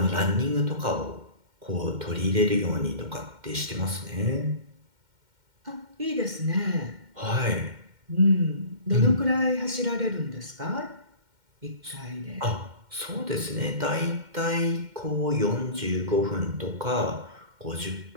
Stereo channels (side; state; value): left; late; 2.1 ms